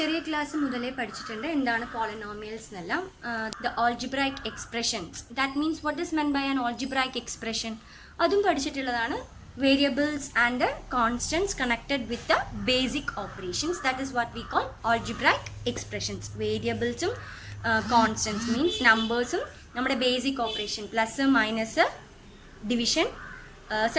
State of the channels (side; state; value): both; identical; correlation 1.00